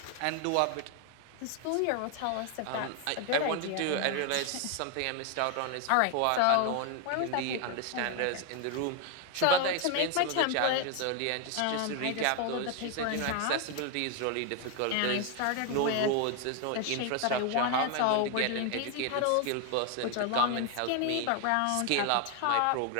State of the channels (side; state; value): both; different; correlation 0.01